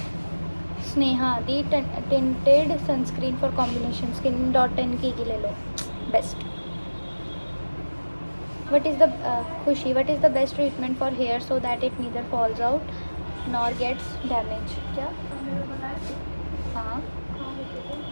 स्नेहा दी, tinted sunscreen for combination skin .10 की ले लो, बेस्ट। वट इज़ द खुशी, what is the best treatment for hair so that it neither falls out nor gets damage. क्या? हाँ,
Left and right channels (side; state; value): both; inverted; correlation -1.00